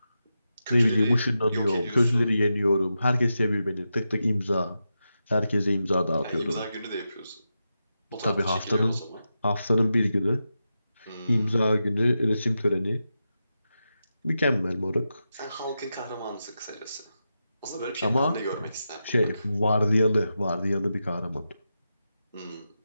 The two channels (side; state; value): both; inverted; correlation -0.89